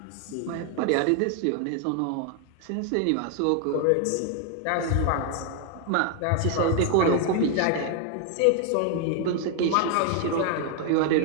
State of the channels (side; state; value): both; different; correlation 0.00